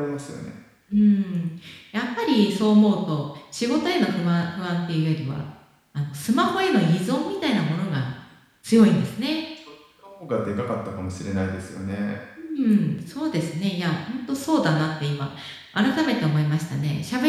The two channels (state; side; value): identical; both; correlation 1.00